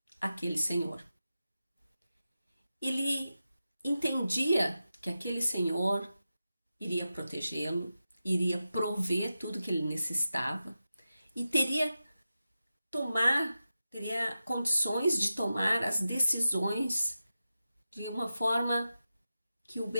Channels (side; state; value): both; inverted; correlation -0.92